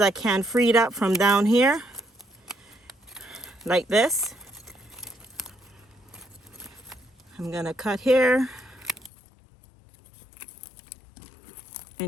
I can freed up from down here, like this. I'm gonna cut here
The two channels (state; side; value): drops out; right; at 9.1 s